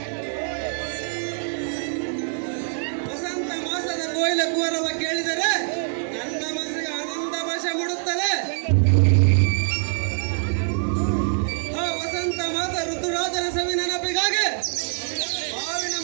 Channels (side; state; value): left; silent; 61 dB below the other